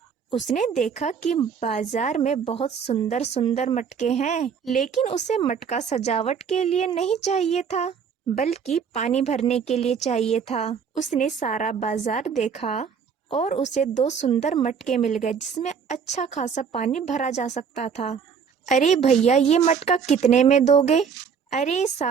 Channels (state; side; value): quieter; left; 6.6 dB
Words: उसने देखा कि बाजार में बहुत सुंदर सुंदर मटके हैं, लेकिन उसे मटका सजावट के लिए नहीं चाहिए था, बल्कि पानी भरने के लिए चाहिए था। उसने सारा बाजार देखा और उसे दो सुंदर मटके मिल गए जिसमें अच्छा खासा पानी भरा जा सकता था। अरे भैया, ये मटका कितने में दोगे? अरे